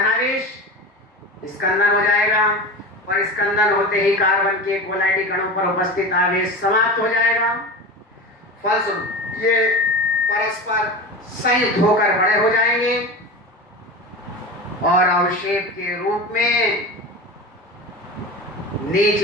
स्कंदन हो जाएगा और स्कंदन होते ही कार्बन के कोलाइडी कणों पर उपस्थित आवेश समाप्त हो जाएगा। फलस्वरूप ये परस्पर संयुक्त होकर बड़े हो जाएंगे और अवक्षेप के रूप में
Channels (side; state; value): both; normal; correlation 0.28